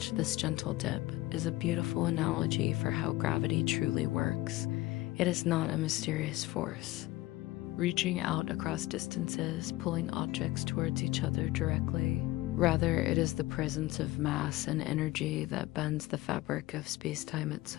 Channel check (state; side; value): quieter; right; 18.0 dB